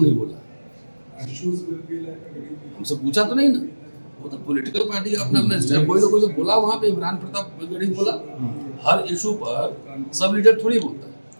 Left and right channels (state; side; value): inverted; both; correlation -1.00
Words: नहीं बोला, हमसे पूछा तो नहीं ना। वो तो पॉलिटिकल पार्टी का अपना अपना स्टाइल, कोई ना कोई तो बोला वहाँ पे, इमरान प्रताप गढ़ी बोला। हर इशू पर सब लीडर थोड़ी बोलता है,